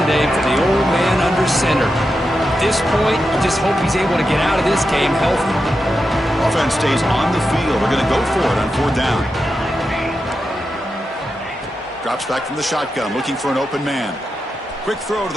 for the old man under center. At this point, you just hope he's able to get out of this game healthy. Offense stays on the field. They're going to go for it on 4th down. Drops back from the shotgun, looking for an open man. Quick throw to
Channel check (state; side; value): normal; both; correlation 0.88